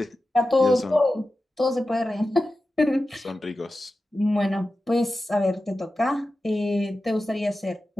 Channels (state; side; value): normal; both; correlation 0.93